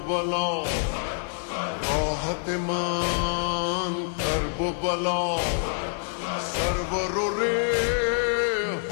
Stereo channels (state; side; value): silent; right; digital silence